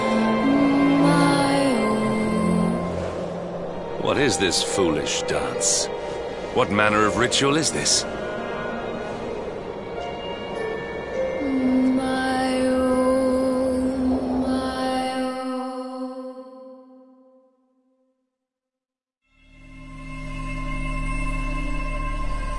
What is this foolish dance? What manner of ritual is this?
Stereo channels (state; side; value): identical; both; correlation 1.00